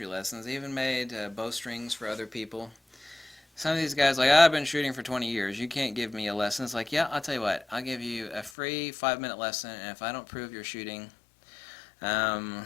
lessons. I even made bowstrings for other people. Some of these guys like, I've been shooting for 20 years. You can't give me a lesson. It's like, yeah, I'll tell you what. I'll give you a free 5-minute lesson, and if I don't prove you're shooting,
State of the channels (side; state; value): right; drops out; at 8.5 s